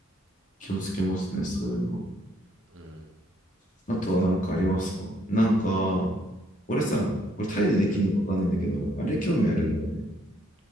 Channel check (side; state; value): both; normal; correlation 0.69